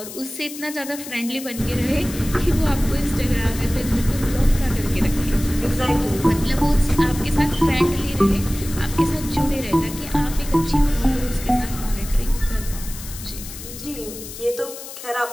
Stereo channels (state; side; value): noise; left; hiss, 12 dB below the sound